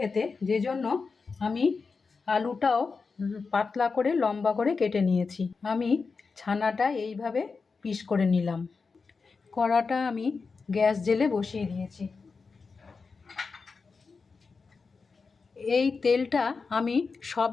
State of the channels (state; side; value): quieter; right; 4.7 dB